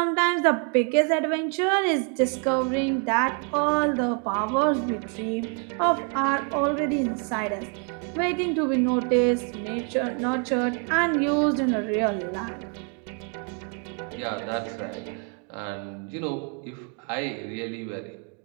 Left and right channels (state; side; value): quieter; left; 39.8 dB